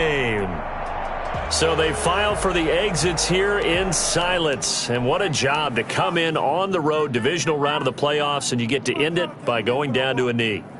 So they file for the exits here in silence. And what a job to come in on the road, divisional round of the playoffs, and you get to end it by going down to a knee.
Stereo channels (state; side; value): identical; both; correlation 1.00